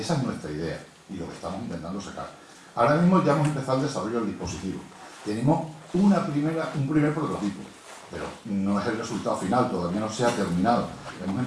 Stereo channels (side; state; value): both; identical; correlation 1.00